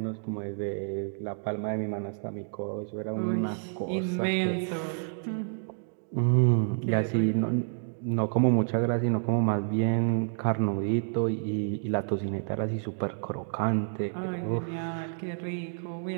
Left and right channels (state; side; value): silent; left; digital silence